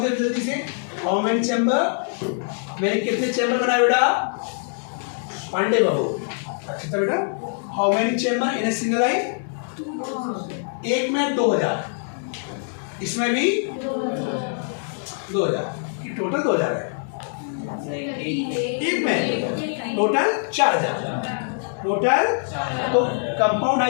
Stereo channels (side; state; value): right; silent; 58 dB below the other